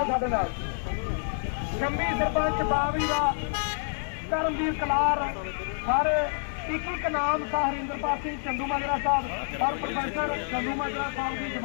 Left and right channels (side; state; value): right; silent; digital silence